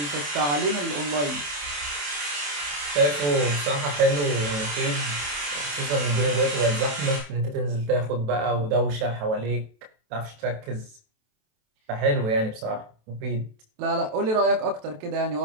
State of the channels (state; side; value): late; left; 28 ms